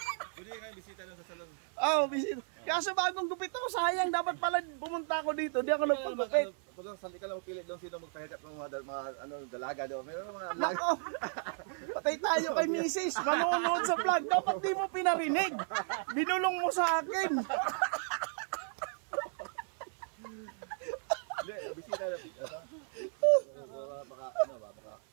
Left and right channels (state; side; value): silent; left; 55 dB below the other